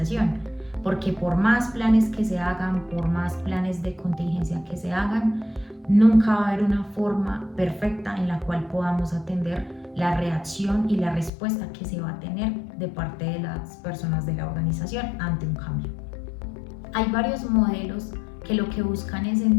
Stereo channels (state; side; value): drops out; right; at 11.3 s